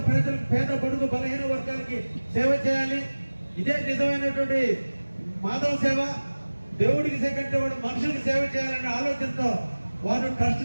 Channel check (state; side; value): inverted; both; correlation -1.00